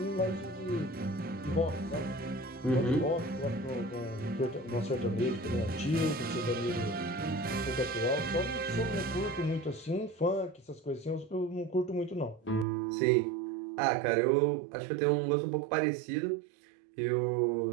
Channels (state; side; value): drops out; left; at 12.7 s